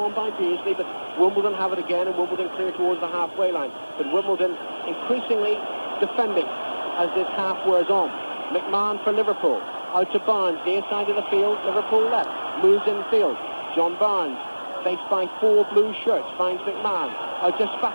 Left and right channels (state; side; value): inverted; both; correlation -1.00